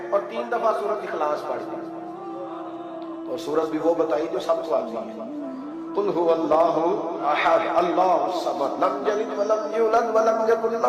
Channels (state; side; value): identical; both; correlation 1.00